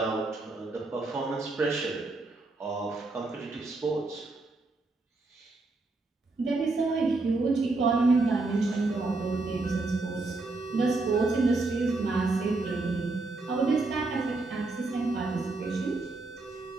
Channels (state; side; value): quieter; left; 3.4 dB